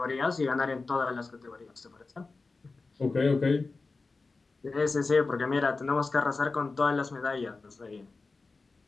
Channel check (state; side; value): quieter; right; 3.8 dB